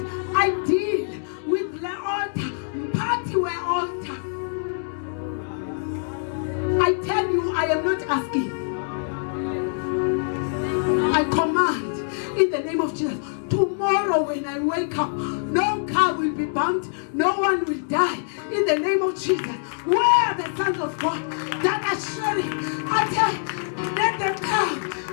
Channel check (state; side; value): silent; right; digital silence